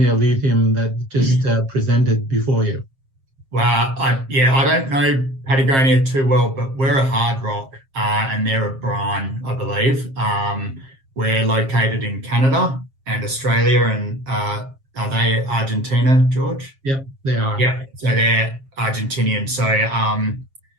lithium that just presented before you? Well, I don't know Patagonia too well, but we're a hard rock and they're a brine, I believe. We're located in Canada and Australia, and are they Argentina, George? Yep, they are. Yeah, so they're Argentinian. So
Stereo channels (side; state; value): left; late; 7.5 ms